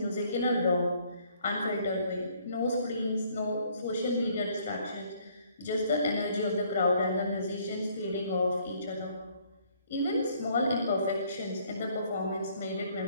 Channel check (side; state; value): both; inverted; correlation -0.63